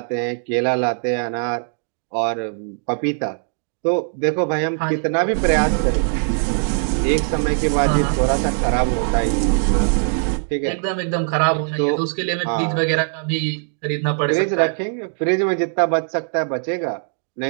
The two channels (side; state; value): left; silent; digital silence